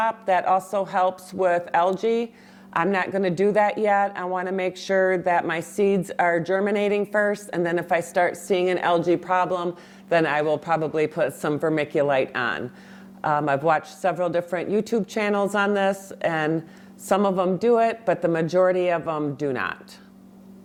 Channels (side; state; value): both; identical; correlation 1.00